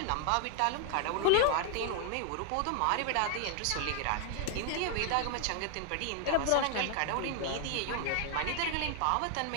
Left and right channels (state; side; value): different; both; correlation 0.00